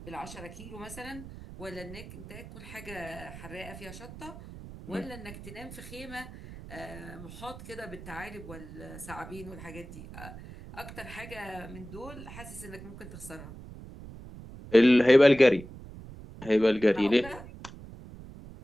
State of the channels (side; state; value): right; noise; rumble, 14 dB below the sound